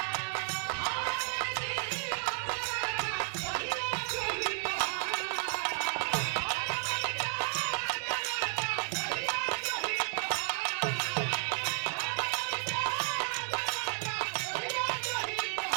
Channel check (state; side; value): silent; left; digital silence